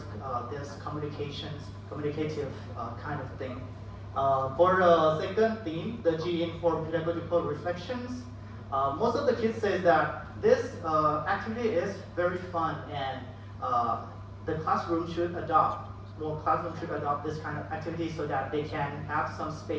this communicative kind of thing. For the second theme, the G-informed pedagogical reflections, most of the kids say that this activity is very fun and the classroom should adopt, more classrooms should adopt this kind of activity so that they can have some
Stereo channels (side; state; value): both; identical; correlation 1.00